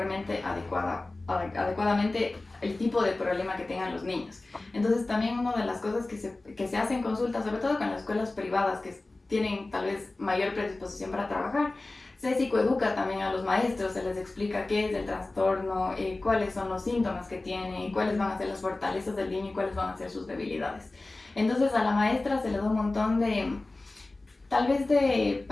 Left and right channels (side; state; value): right; quieter; 3.1 dB